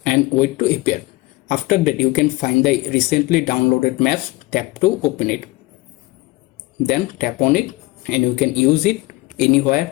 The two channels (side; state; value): right; quieter; 21.0 dB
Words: and wait to appear. After that, you can find the recently downloaded maps, tap to open it. Then tap on it and you can use it